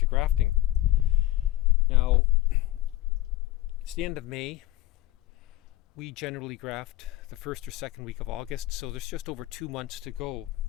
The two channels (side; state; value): right; quieter; 16.5 dB